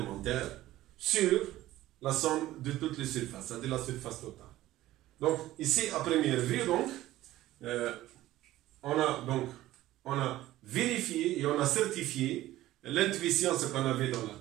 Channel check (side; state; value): left; quieter; 15.5 dB